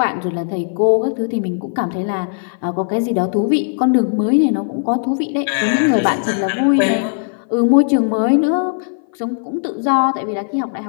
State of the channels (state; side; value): silent; right; 58 dB below the other